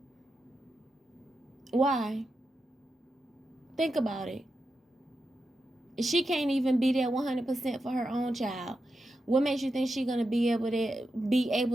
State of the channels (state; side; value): normal; both; correlation 0.88